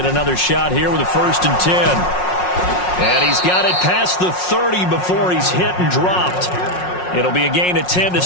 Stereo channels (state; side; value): late; right; 5.5 ms